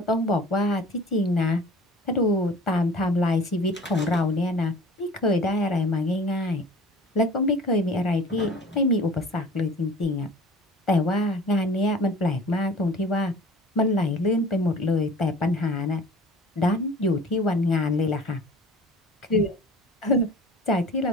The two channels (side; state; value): both; normal; correlation 0.43